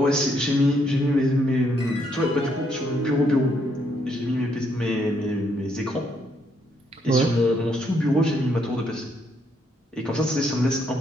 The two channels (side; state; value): both; normal; correlation 0.73